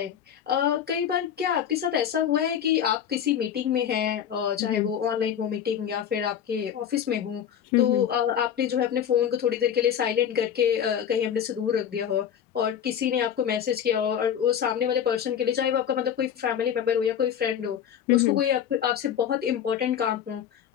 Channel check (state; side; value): quieter; right; 9.0 dB